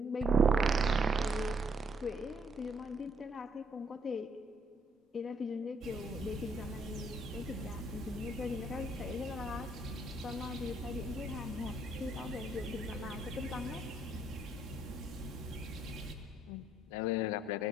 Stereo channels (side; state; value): both; normal; correlation 0.69